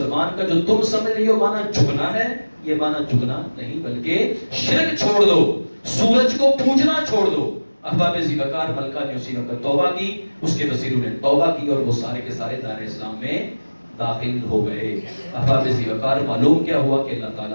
کا جو تم سمجھ رہی ہو مانا جھکنا ہے، یہ مانا جھکنا نہیں بلکہ شرک چھوڑ دو، سورج کو پوجنا چھوڑ دو۔ احباب زیرکار، ملکہ نے اسی وقت توبہ کی، اس کے وزیروں نے توبہ کی اور وہ سارے کے سارے دار اسلام میں داخل ہو گئے۔ احباب زیرکار، معلوم کیا ہوا کہ اللہ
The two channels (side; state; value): both; inverted; correlation -1.00